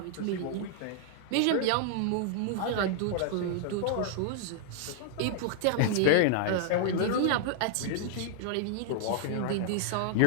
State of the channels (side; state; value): both; different; correlation -0.01